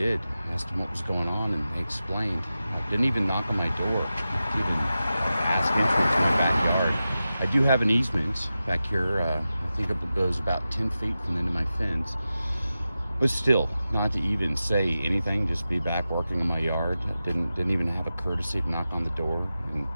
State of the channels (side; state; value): both; inverted; correlation -0.93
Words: I asked them what was going on, and they explained. I didn't even knock on my door. Didn't even ask entrance to my backyard. I do have an easement back here. I think it goes about 10 feet from the end of my fence. But still, not to even say anything, just be back working in my yard. Didn't even have a courtesy to knock on the door.